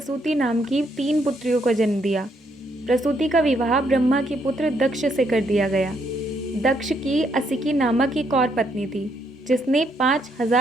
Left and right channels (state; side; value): normal; both; correlation 0.73